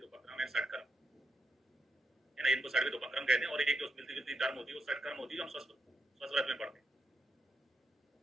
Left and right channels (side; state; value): both; normal; correlation 0.81